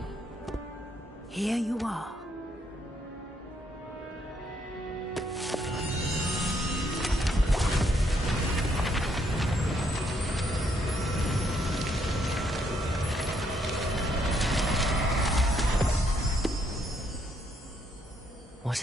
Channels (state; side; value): normal; both; correlation 0.72